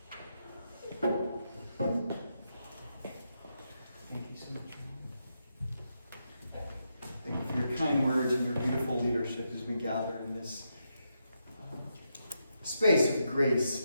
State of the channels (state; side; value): inverted; both; correlation -0.83